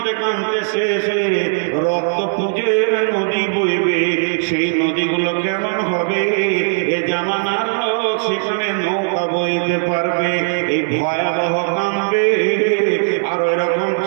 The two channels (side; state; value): left; silent; digital silence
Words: কাঁদতে শেষ হয়ে রক্ত পুঁজের নদী বইবে। সেই নদীগুলো কেমন হবে? এ জামানার লোক সেখানে নৌকা বইতে পারবে, এই ভয়াবহ কাঁদবে। আর ওইরকম